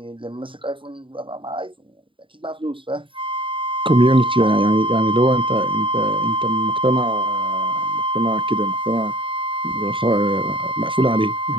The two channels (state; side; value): late; left; 0.25 ms